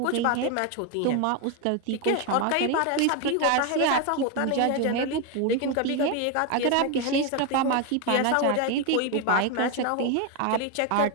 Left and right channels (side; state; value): both; different; correlation 0.01